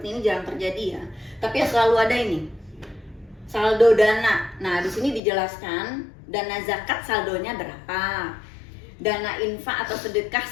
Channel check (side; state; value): right; drops out; at 5.2 s